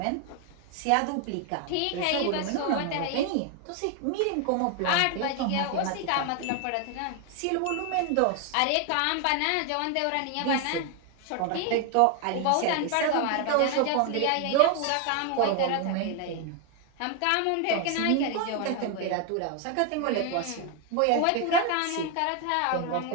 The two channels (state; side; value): different; both; correlation 0.01